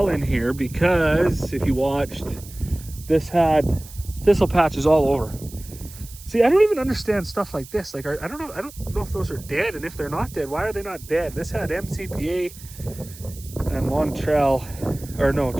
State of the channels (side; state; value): right; noise; hiss, 18 dB below the sound